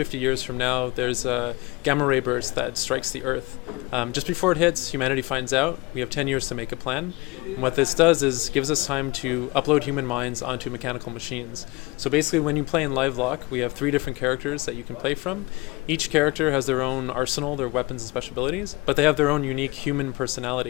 years from now, there's a gamma ray burst that strikes the Earth. Just before it hits, humanity finds out. We have 10 years to make a plan. And what this does is gives us time to upload human minds onto mechanical machines. So basically when you play in Livelock, we have 3 different characters that you can play from. Each character has their own arsenal, their weapons and special abilities, but they have their own unique human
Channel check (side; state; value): right; quieter; 23.6 dB